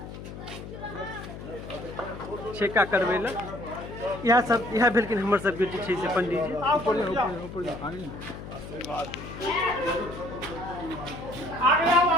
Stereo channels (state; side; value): noise; left; hum, 11 dB below the sound